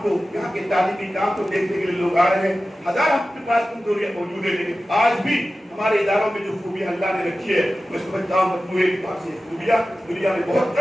کو, یہاں کے تعلیمی کام کو دیکھنے کے لیے لوگ آ رہے ہیں. ہزار ہم کے پاس کمزوریاں موجود ہیں, لیکن آج بھی ہمارے اداروں میں جو خوبیاں اللہ نے رکھی ہے, میں سمجھتا ہوں مجموعے کے پاس یہ خوبیاں دنیا میں بہت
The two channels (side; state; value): both; normal; correlation 0.95